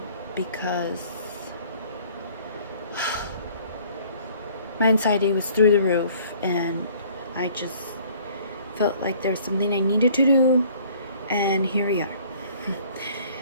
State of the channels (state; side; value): inverted; both; correlation -0.55